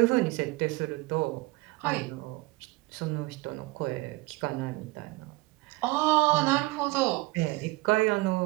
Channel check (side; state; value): left; quieter; 22.1 dB